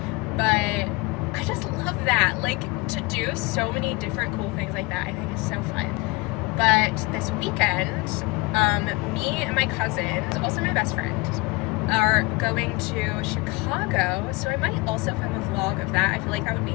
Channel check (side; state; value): right; quieter; 24.7 dB